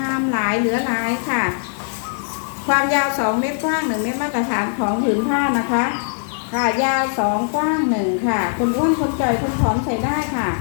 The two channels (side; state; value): right; silent; digital silence